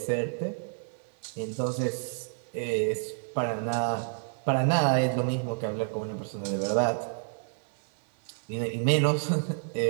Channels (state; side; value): silent; left; digital silence